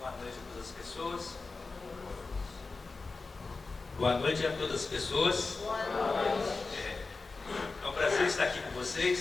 noite a todas as pessoas. Boa noite a todas as pessoas. Boa noite. É um prazer estar aqui com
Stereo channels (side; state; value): right; quieter; 3.9 dB